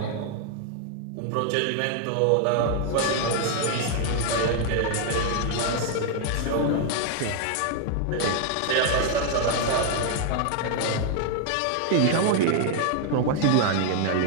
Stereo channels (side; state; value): both; different; correlation 0.00